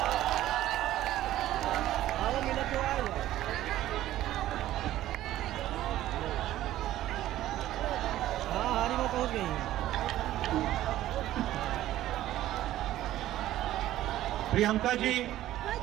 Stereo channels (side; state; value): left; quieter; 14.0 dB